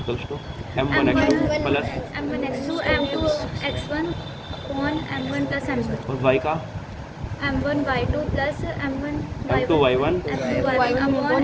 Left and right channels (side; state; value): both; identical; correlation 1.00